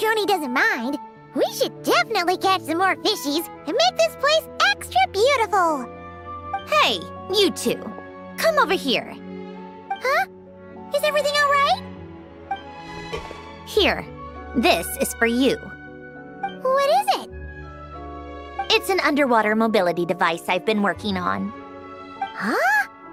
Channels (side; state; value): both; identical; correlation 1.00